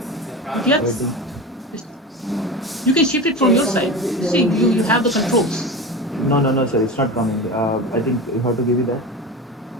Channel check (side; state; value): both; normal; correlation 0.27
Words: Yes. You can shift it from your side. See, you have the controls. No, sir, it's not coming. I think you have to give it that.